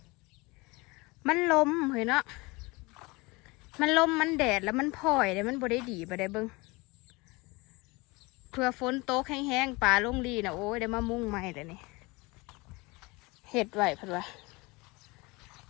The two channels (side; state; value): right; quieter; 24.7 dB